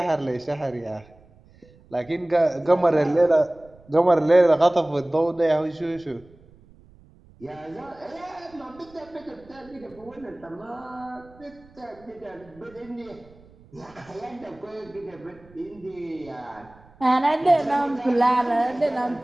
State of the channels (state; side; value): noise; right; rumble, 26 dB below the sound